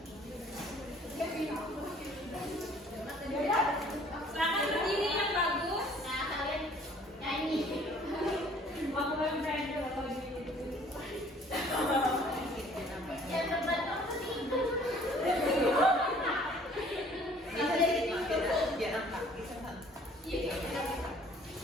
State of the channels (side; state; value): both; normal; correlation 0.55